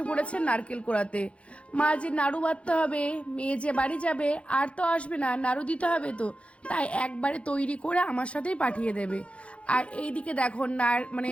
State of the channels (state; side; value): late; right; 0.061 ms